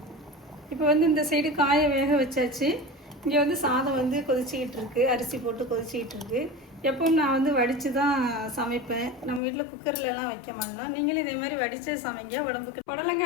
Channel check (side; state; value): right; drops out; at 9.4 s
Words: இப்போ இந்த சைடு காயை வேக வச்சாச்சு. இங்கே சாதம் கொதிச்சிக்கிட்டு இருக்கு. அரிசி போட்டு கொதிச்சிக்கிட்டு இருக்கு. எப்பவும் நான் வடித்து தான் சமைப்பேன். நம்ம வீட்டில் குக்கர்லலாம் வைக்க மாட்டோம். நீங்களும் இதே மாதிரி வடித்து சமைங்க, உடம்புக்கு.